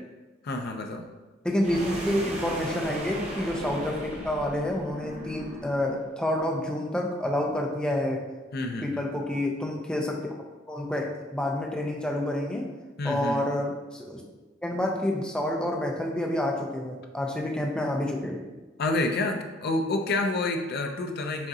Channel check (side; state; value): both; normal; correlation 0.67